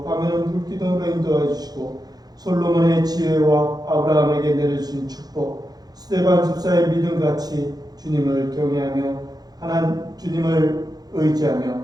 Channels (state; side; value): late; left; 0.19 ms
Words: 밤에는 불 기둥으로 인도해 주시고 솔로몬의 지혜와 아브라함에게 내려주신 축복, 스데반 집사의 믿음같이 주님을 경외하며 주님을 의지하며